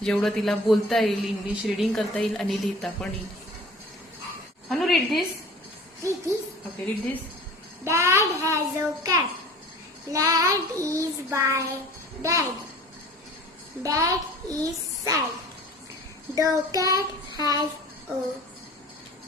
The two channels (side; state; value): both; normal; correlation 0.44